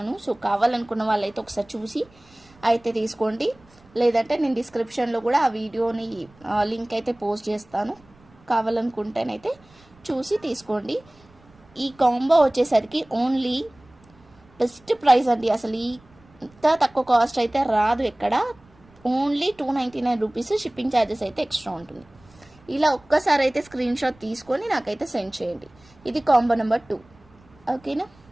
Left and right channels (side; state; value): right; noise; rumble, 28 dB below the sound